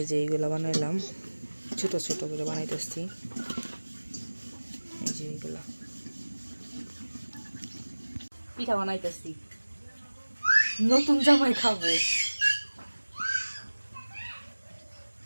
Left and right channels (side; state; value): both; inverted; correlation -1.00